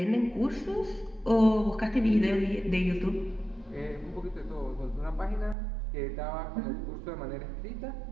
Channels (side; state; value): left; drops out; at 5.6 s